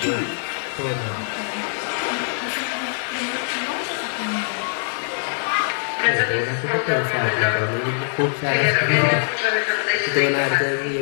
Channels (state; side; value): silent; right; digital silence